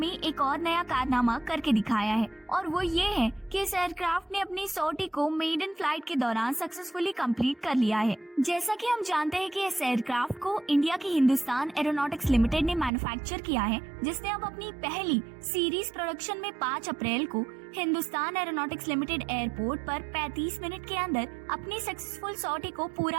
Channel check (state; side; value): drops out; left; at 12.9 s